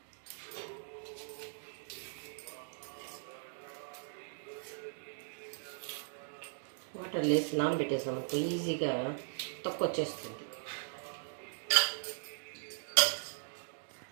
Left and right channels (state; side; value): silent; left; digital silence